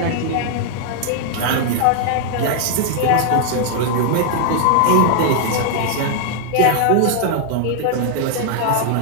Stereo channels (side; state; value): both; different; correlation 0.00